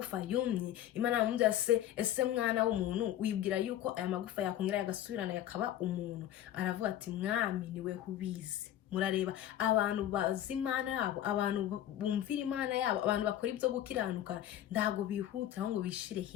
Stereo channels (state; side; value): quieter; right; 12.0 dB